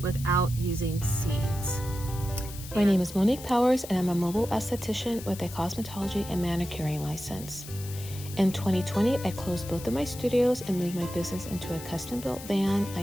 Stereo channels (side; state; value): left; noise; hiss, 14 dB below the sound